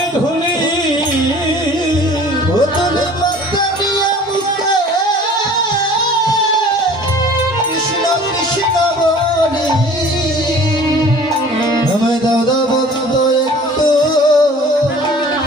ধুলি ও তুলি মাথা নিয়ে মুখে কৃষ্ণ কৃষ্ণ বলি আমায় দাদা ভক্ত একটু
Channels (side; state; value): both; normal; correlation 0.47